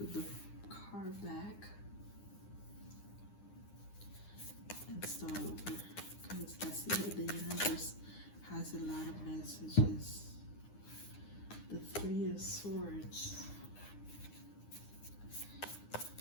the card back and start over because I see that the universe has a lot of messages. The Three of Swords.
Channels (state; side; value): late; right; 9.8 ms